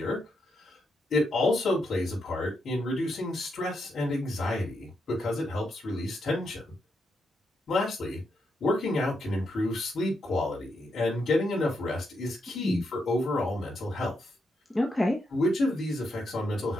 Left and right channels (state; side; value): normal; both; correlation 0.82